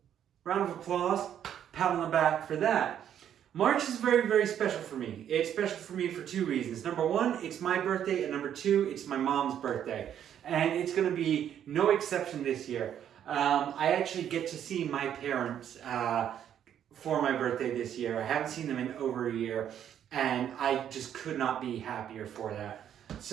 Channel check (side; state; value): left; quieter; 9.7 dB